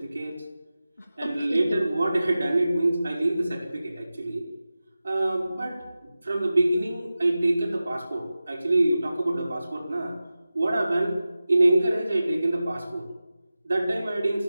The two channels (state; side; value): inverted; both; correlation -0.95